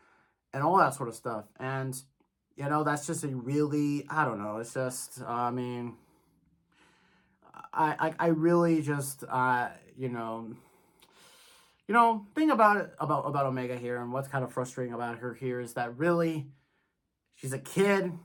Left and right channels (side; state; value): both; identical; correlation 1.00